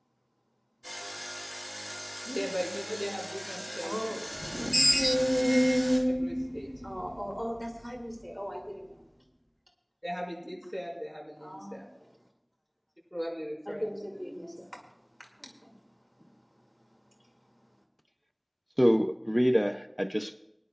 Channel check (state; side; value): identical; both; correlation 1.00